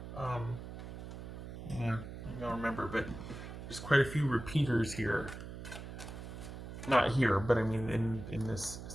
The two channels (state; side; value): noise; right; hum, 10 dB below the sound